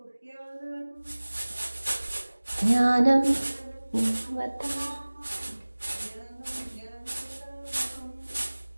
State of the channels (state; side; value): inverted; both; correlation -1.00